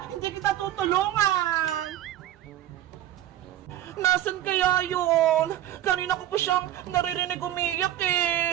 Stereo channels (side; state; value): left; quieter; 12.6 dB